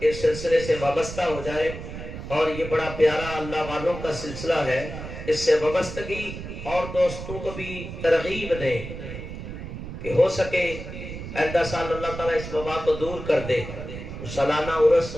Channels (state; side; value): noise; right; rumble, 9 dB below the sound